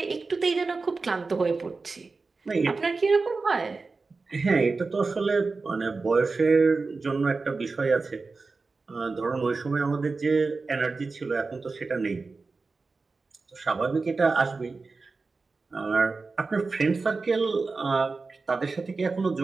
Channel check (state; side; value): quieter; left; 4.1 dB